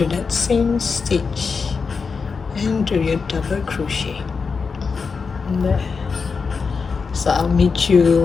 that same stitch and do your double crochet. There. So I'll meet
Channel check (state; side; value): quieter; right; 5.1 dB